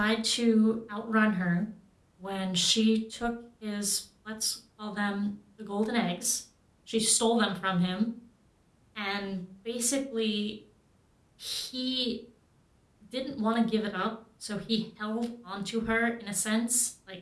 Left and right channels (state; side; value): identical; both; correlation 1.00